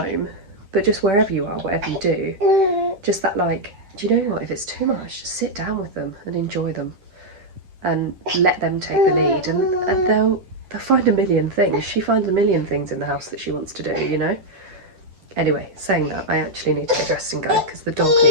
but just wherever you are, whatever you do, just that, like, do you know what? If it's too much, just sit down with them and enjoy them, and let them take the lead, and they'll find a million things. She finds a million things in the house that she wants to do, you know. Anyway, saying that, I actually need to get dressed and go because the dog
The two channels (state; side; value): late; left; 11 ms